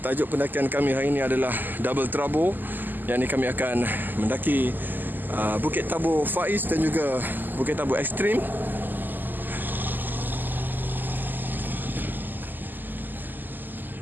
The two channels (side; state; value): left; late; 0.088 ms